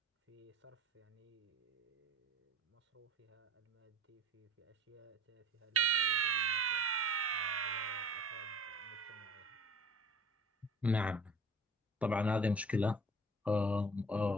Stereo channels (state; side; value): normal; both; correlation 0.45